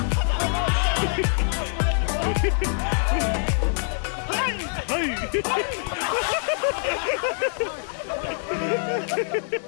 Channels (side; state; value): right; silent; digital silence